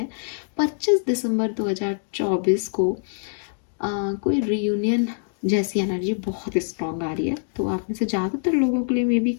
25 दिसंबर 2024 को कोई रियूनियन जैसी एनर्जी बहुत स्ट्रांग आ रही है। तो आप में से ज़्यादातर लोगों के लिए मे बी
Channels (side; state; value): right; silent; digital silence